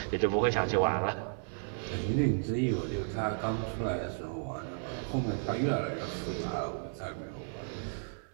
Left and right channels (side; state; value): left; silent; 56 dB below the other